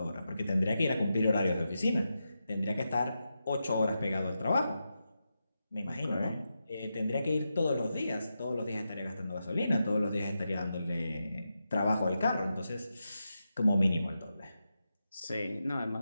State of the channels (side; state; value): both; inverted; correlation -0.88